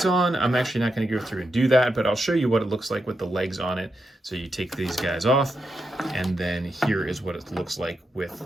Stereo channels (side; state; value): both; normal; correlation 0.85